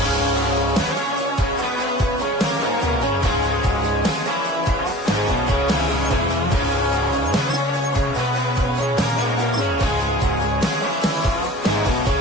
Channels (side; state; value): both; normal; correlation 0.43